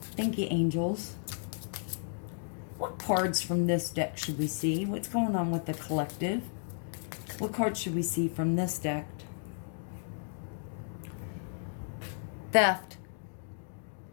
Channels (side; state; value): right; silent; digital silence